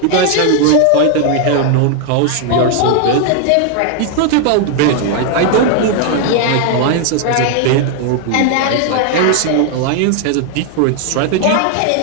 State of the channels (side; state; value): both; different; correlation 0.00